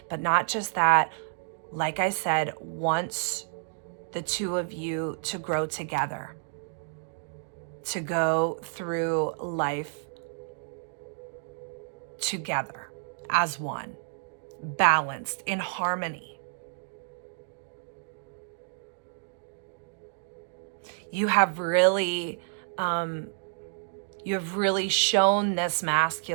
but not just that. Like I said, wants the two of you to grow together, to go through life together as one, balanced, in harmony. You have really shown this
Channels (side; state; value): left; silent; digital silence